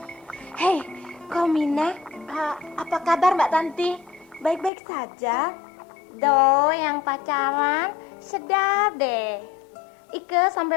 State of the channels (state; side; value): drops out; right; at 4.7 s